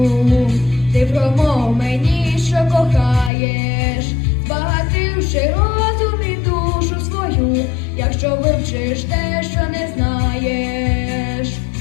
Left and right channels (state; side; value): drops out; right; at 3.3 s